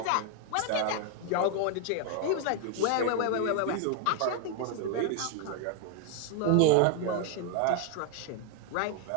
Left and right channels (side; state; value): both; different; correlation 0.00